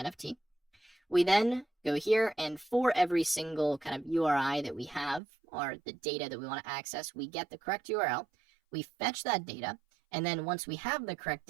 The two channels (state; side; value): drops out; left; at 5.2 s